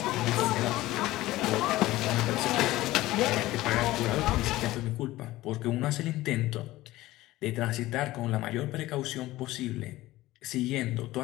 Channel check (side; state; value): right; quieter; 17.2 dB